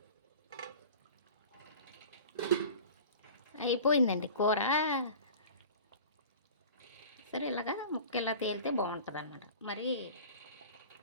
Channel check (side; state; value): both; inverted; correlation -0.40